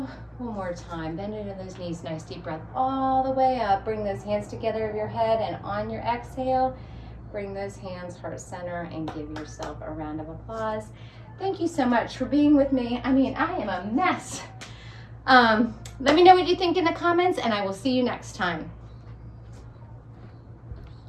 One more time. Bend into those knees. Nice deep breath all the way up. Bring those hands together over your head, and on your exhale, bring those hands heart center and give yourself a round of applause. Thank you so much for being with me. I mean, I am a mess. Let me know what you think in the comments, and I will see you next time.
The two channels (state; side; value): identical; both; correlation 1.00